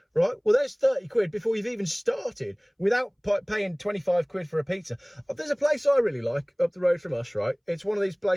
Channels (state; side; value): identical; both; correlation 1.00